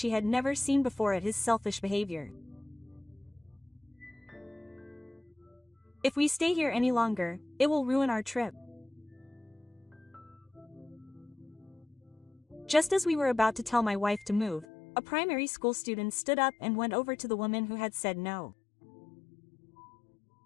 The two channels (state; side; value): drops out; right; at 14.7 s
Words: had never seen before at his selfish behavior. If we stay here any longer, it will ruin our trip. Just as we were about to tell my wife to move, a primary school student stood up and went over to the woman who had said no.